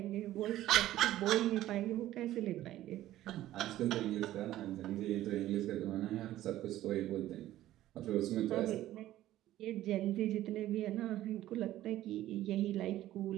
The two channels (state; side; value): quieter; left; 14.2 dB